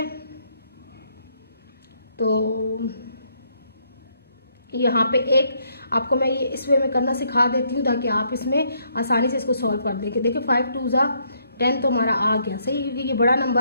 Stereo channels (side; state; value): both; inverted; correlation -0.72